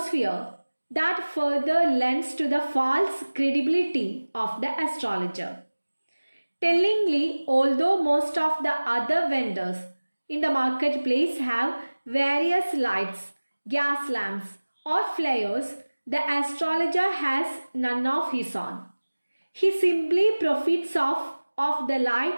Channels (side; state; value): both; inverted; correlation -1.00